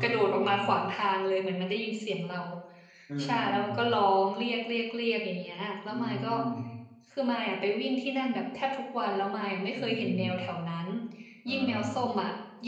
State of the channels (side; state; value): both; identical; correlation 1.00